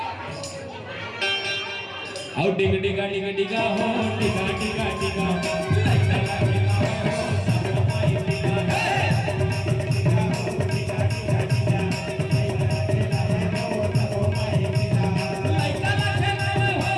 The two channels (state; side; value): identical; both; correlation 1.00